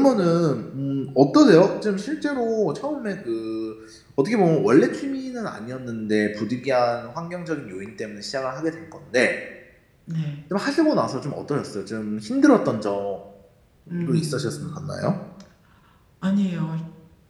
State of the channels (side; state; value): both; identical; correlation 1.00